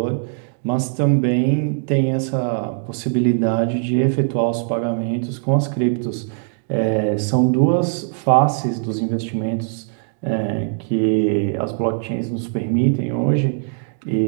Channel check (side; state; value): left; silent; digital silence